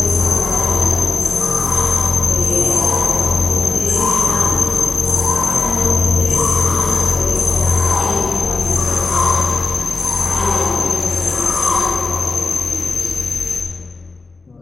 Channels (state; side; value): quieter; right; 3.8 dB